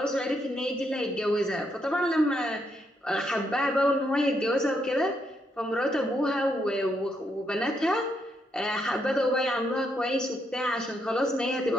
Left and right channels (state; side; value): normal; both; correlation 0.77